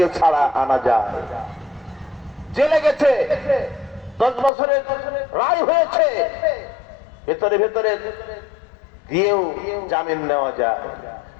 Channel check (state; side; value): drops out; right; at 4.5 s